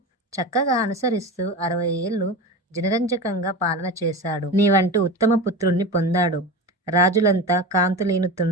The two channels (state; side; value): normal; both; correlation 0.27